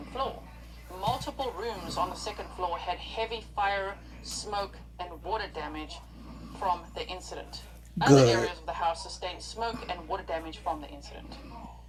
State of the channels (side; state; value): both; identical; correlation 1.00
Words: floor. Multiple rooms on the second floor had heavy fire, smoke, and water damage from the incident. Other areas of the house sustained smoke and water damage from the incident.